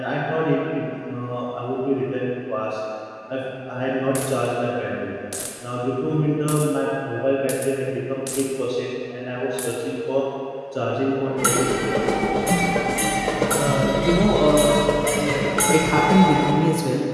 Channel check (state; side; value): identical; both; correlation 1.00